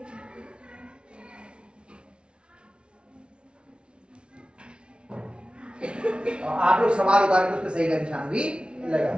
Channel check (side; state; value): left; late; 0.057 ms